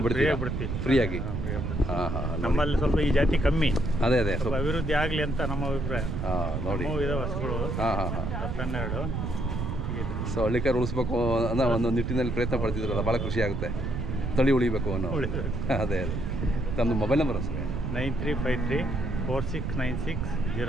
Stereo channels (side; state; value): right; noise; rumble, 2 dB below the sound